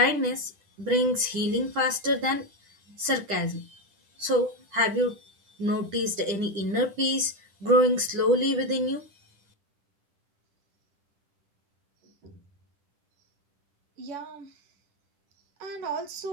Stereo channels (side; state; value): left; late; 10 ms